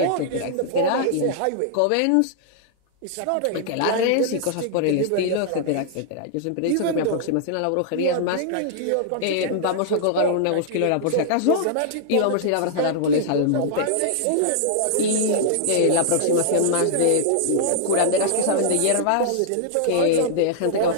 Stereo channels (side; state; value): both; different; correlation -0.01